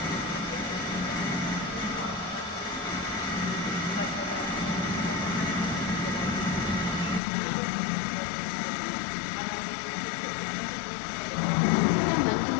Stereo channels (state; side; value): drops out; right; at 7.2 s